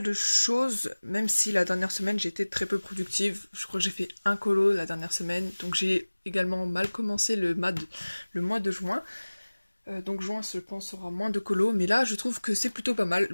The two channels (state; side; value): inverted; both; correlation -1.00